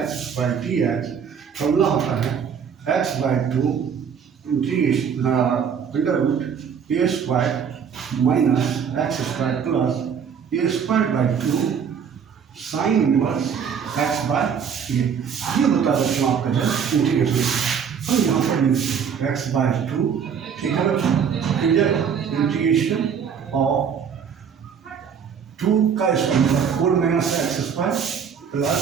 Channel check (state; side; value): quieter; left; 7.2 dB